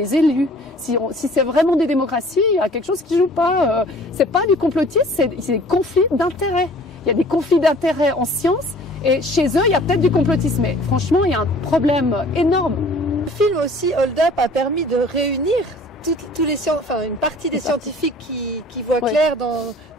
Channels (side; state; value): both; normal; correlation 0.50